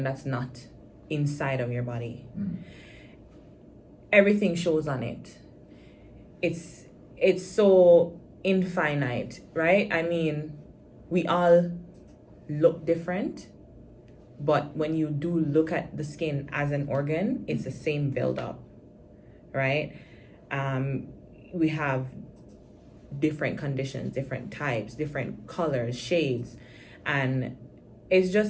that's not inside of your body. everything shows on it. It's so infinite, right? I mean, we all look different, but when you do look at the skin as an organ, it's the same buildup, right? We have different conditions, different types, different colors, shades, and it's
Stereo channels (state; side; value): identical; both; correlation 1.00